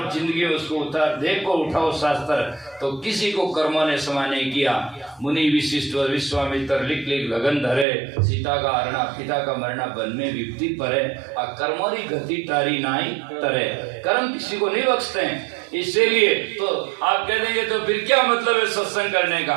जिंदगी में उसको उतार देखो, उठाओ शास्त्र, तो किसी को कर्मों ने क्षमा नहीं किया। मुनि विशिष्ट और विश्वामित्र लिख लगन धरे, सीता का हरणा पिता का मरना बन में विपत्ति परे, और कर्मोरी गति तारी नाई तरे। कर्म किसी को नहीं बख्शते हैं। इसीलिए तो आप कह देंगे तो फिर क्या मतलब है सत्संग करने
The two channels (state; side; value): drops out; left; at 7.9 s